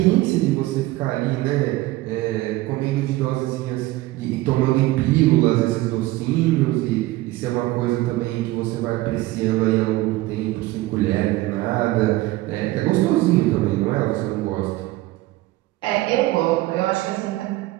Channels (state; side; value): quieter; left; 18.1 dB